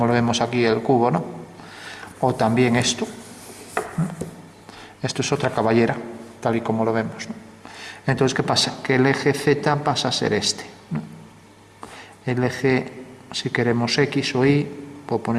lo vemos aquí el cubo, ¿no? O también esto, ¿no? Esto es otra caballera, tal y como lo vemos, ¿no? Entonces, ¿qué pasa? Que el eje Z pasa a ser este, ¿no? El eje, si queremos X o Y, puedo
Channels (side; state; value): both; identical; correlation 1.00